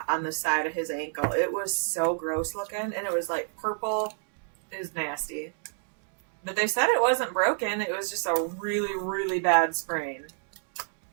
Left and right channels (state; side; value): silent; left; digital silence